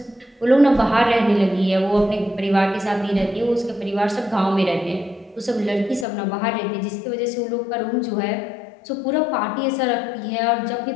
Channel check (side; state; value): right; drops out; at 6.1 s